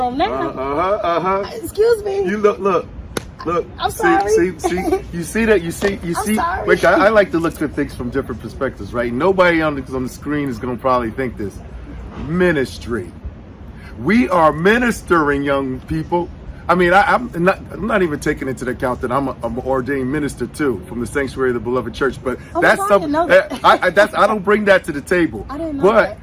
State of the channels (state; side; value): identical; both; correlation 1.00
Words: now. Excuse me. You look. I'm sorry. See, you see that? You see. sorry. Wait, I like to look at things from different perspectives, right? Nobody on the screen is going to probably think this. Ministry. We are ministering, young people. I mean, I'm not even taking into account that I'm an ordained minister too, from the Sanctuary of the Beloved Church. But that's something I don't bring that to the table. I didn't know but